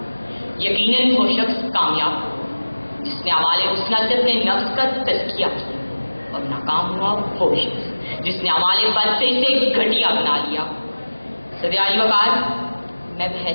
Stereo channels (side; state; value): both; inverted; correlation -1.00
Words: यकीनन वो शख्स कामयाब जिसने अमाले हुस्ना से अपने नफ्स का तज़किया किया, और नाकाम हुआ वो शख्स जिसने अमाले बद से इसे घटिया बना लिया। सदियाई वकार, मैं